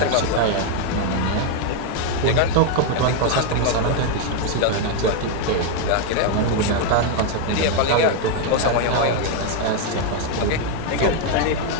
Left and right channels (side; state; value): both; different; correlation 0.01